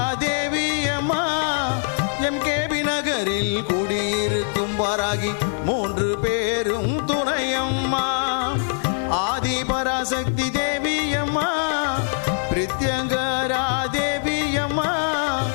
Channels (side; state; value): right; silent; 64 dB below the other